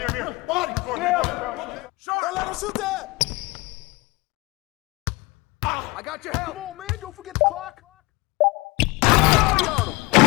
Body. Don't let him shoot that. I got your help. Come on, man. Don't forget the clock.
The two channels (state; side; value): quieter; right; 23.9 dB